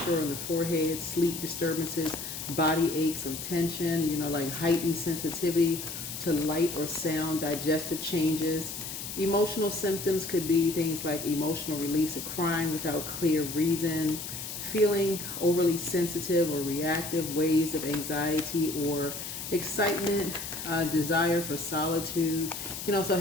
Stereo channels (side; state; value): left; noise; hiss, 7 dB below the sound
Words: on the forehead, sleep disturbances, body aches or tension, like heightened sensitivity to light or sound, digestive changes. Emotional symptoms could be things like emotional release of crying without clear reason, feeling overly sensitive or reactive, waves of anxiety or excitement, desire for solitude. You can also